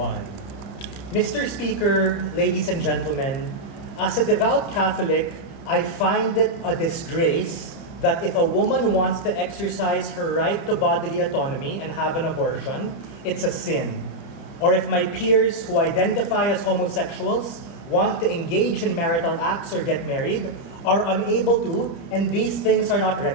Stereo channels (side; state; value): right; late; 30 ms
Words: Mr. Speaker, ladies and gentlemen, as a devout Catholic, I find it a disgrace that if a woman wants to exercise her right to bodily autonomy and have an abortion, it's a sin. Or if my peers who identify as homosexuals want to engage in marital acts or get married, are unable to, and these things are not